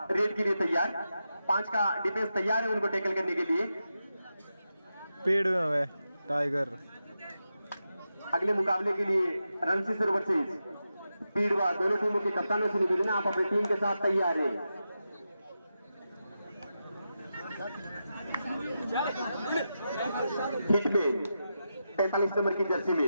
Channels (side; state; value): both; inverted; correlation -0.89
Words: रेड के लिए तैयार। 5 का डिफेंस तैयार है उनको टैकल करने के लिए। पेड़ में है टाइगर। अगले मुकाबले के लिए रणसीसर वर्सेस पीड़वा दोनों टीमों के कप्तानों से निवेदन, आप अपनी टीम के साथ तैयार है। हिटमैन 45 नंबर की जर्सी